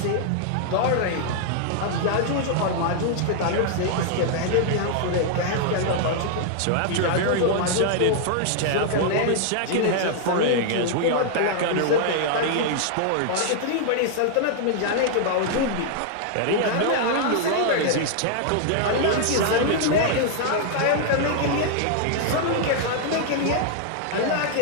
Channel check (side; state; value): both; different; correlation -0.01